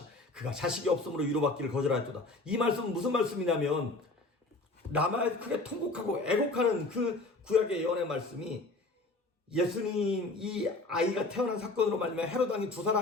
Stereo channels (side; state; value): right; quieter; 3.1 dB